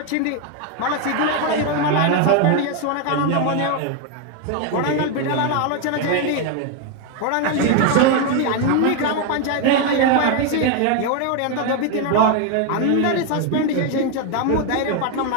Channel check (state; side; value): different; both; correlation 0.01